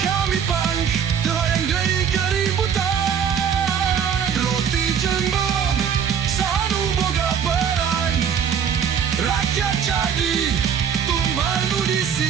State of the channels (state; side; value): quieter; left; 7.7 dB